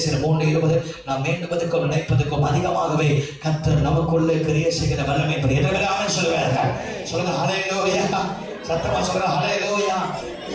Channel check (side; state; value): both; identical; correlation 1.00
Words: 3:20 நாம் வேண்டுவதற்கும் நினைப்பதற்கும் அதிகமாகவே கர்த்தர் நமக்குள்ளே கிரியை செய்கிற வல்லமை பெரியவர். ஆமென் சொல்லுவாங்க. சொல்லுங்க ஹல்லேலூயா. சத்தமா சொல்லுங்க ஹல்லேலூயா.